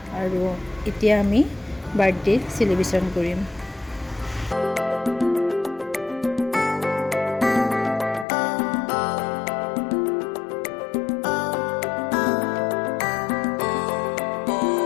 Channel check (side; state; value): right; drops out; at 8.2 s